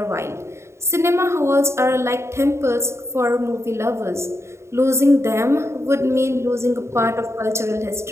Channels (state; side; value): late; left; 0.13 ms